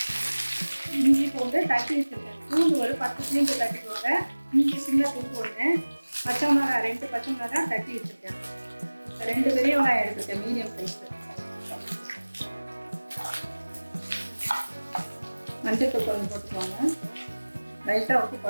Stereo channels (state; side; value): inverted; both; correlation -1.00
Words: இஞ்சி பூண்டு தட்டி வச்சுருக்கேன். பூண்டு ஒரு 10 பூண்டு தட்டிக்கோங்க. இஞ்சி சின்ன பூண்டு ஒன்று, பச்சை மிளகாய் 2 பச்சை மிளகாய் தட்டி வச்சுருக்கேன். 2 பெரிய வெங்காயம் எடுத்துருக்கேன் மீடியம் சைஸு. மஞ்சள் கொஞ்சம் போட்டுக்கோங்க. லைட்டாக உப்பு